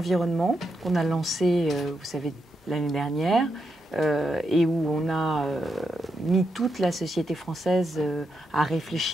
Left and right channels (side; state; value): both; normal; correlation 0.84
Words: qu'on a lancé, vous savez, l'année dernière, et où on a mis toute la société française à